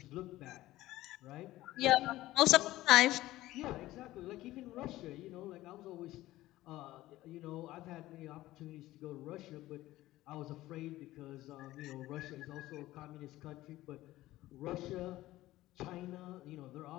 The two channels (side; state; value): right; quieter; 16.4 dB